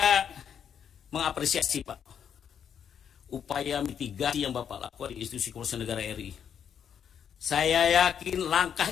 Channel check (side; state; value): right; quieter; 8.2 dB